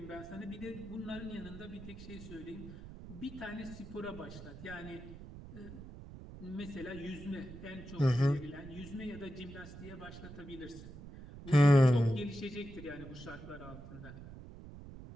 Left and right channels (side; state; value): right; noise; rumble, 13 dB below the sound